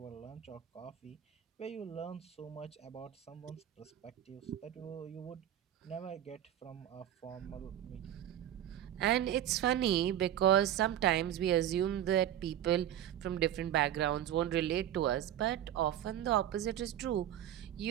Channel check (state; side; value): quieter; left; 11.4 dB